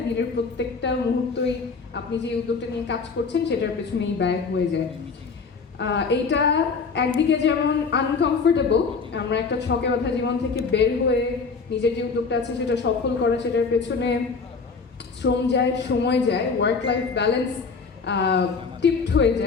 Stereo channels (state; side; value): quieter; right; 4.9 dB